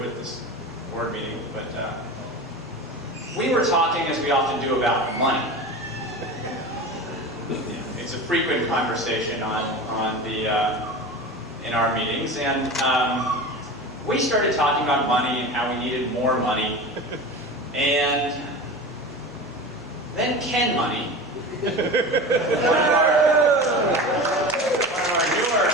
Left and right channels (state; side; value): normal; both; correlation 0.30